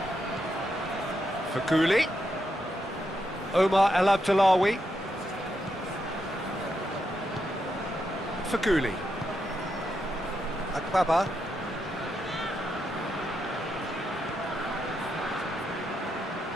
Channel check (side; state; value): both; normal; correlation 0.82